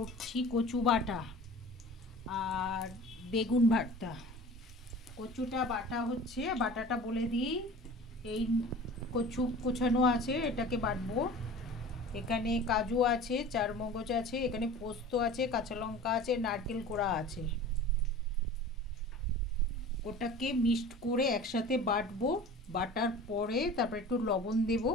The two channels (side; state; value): both; normal; correlation 0.40